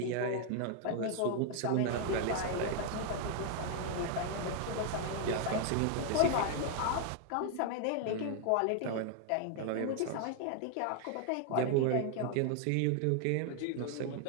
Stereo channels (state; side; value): different; both; correlation 0.00